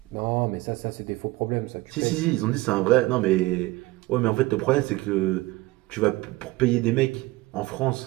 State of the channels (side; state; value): left; quieter; 20.6 dB